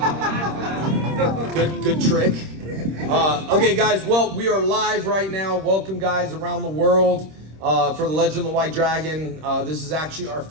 Good trick. Okay, guys, well, we are live right now. Welcome, guys, around the world for the Legend of the White Dragon. This is actually our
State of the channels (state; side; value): late; left; 26 ms